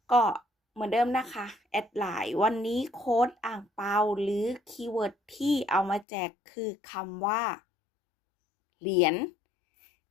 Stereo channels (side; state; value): right; drops out; at 6.1 s